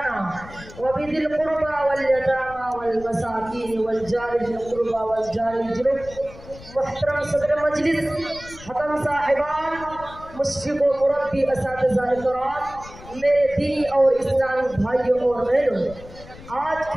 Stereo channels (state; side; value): noise; left; rumble, 17 dB below the sound